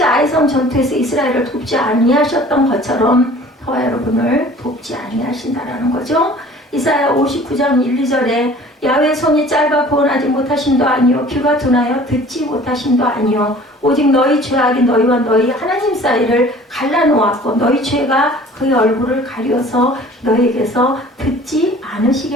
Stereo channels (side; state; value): both; normal; correlation 0.48